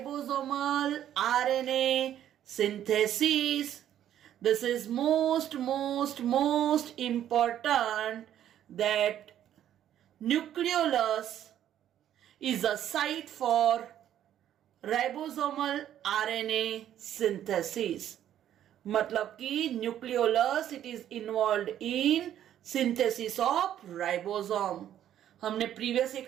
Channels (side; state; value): left; quieter; 11.0 dB